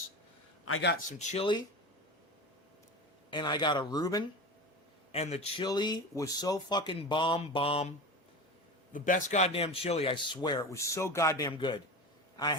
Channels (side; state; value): both; normal; correlation 0.28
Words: I got some chili, and I got a Reuben, and the chili was so fucking bomb. The best goddamn chili, I swear. It was so goddamn good.